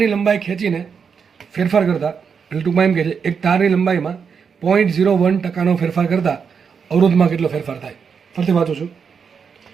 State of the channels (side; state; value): left; quieter; 6.3 dB